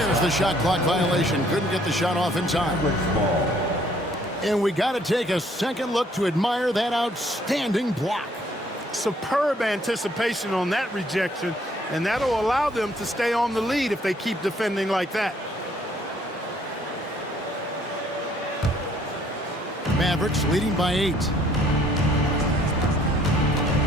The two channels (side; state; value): both; normal; correlation 0.63